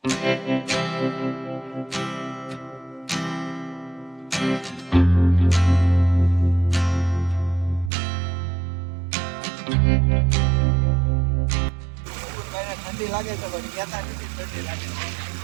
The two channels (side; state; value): left; drops out; at 7.9 s